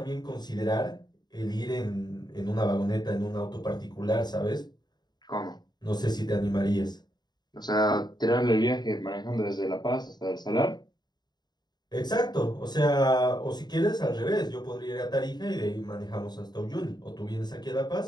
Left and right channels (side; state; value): right; late; 0.20 ms